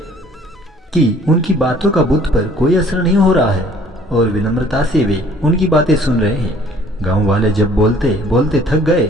कि उनकी बातों का बुद्ध पर कोई असर नहीं हो रहा है और विनम्रता से वे उनकी बातें सुन रहे हैं। गांव वाले जब बोलते बोलते थक गए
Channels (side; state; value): both; normal; correlation 0.56